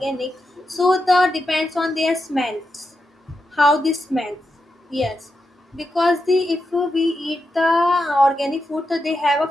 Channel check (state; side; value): normal; both; correlation 0.87